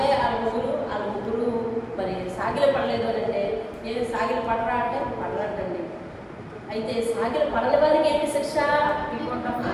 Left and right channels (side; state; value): both; identical; correlation 1.00